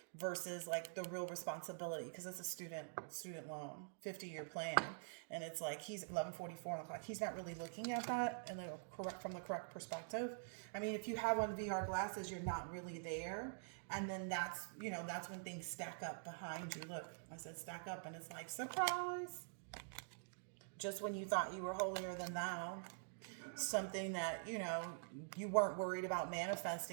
versus like the real responsibility, because it's a student loan 50-year plan, and it's like he's 11:44 on the clock. He's not really looking at that and from the correct perspective. I mean, if you have on VR glasses, you're not really there, and then that's, you know, that's when things stack up behind you. Look, I said stack up, and it's like surprise. Just when you thought you were holier than thou, something that, you know, you weren't worried about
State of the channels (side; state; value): left; silent; digital silence